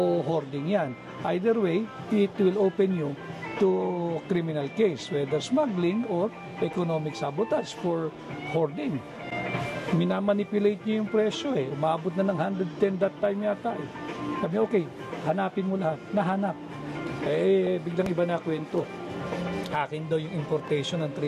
hoarding yan. Either way, it will open you to criminal case, whether smuggling or economic sabotage for hoarding. Minamanipulate niyo yung presyo Umabot na ng 110 that time yata Sabi, okay, hanapin mo lahat. Nahanap. Biglang iba na kwento. Akin daw yung importation ng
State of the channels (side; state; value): both; identical; correlation 1.00